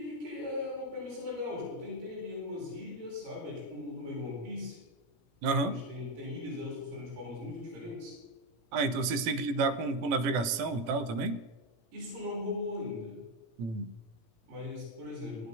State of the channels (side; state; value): left; late; 18 ms